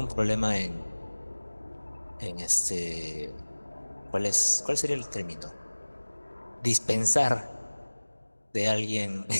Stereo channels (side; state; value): both; inverted; correlation -1.00